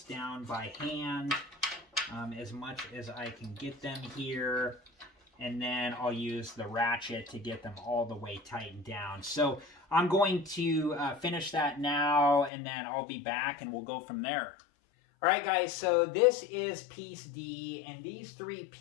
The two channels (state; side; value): drops out; right; at 12.5 s